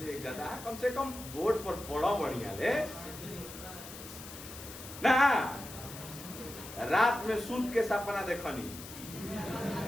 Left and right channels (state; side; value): noise; left; hiss, 13 dB below the sound